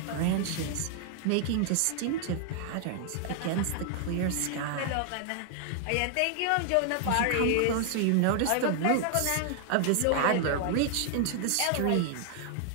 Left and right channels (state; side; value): different; both; correlation 0.00